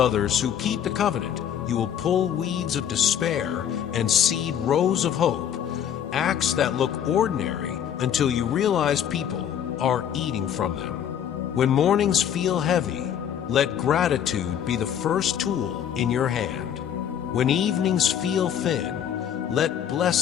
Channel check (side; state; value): right; quieter; 9.3 dB